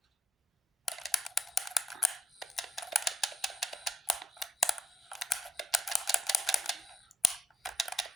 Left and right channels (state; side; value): normal; both; correlation 0.85